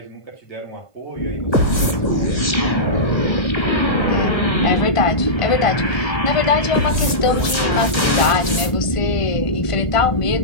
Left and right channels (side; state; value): right; late; 1.5 ms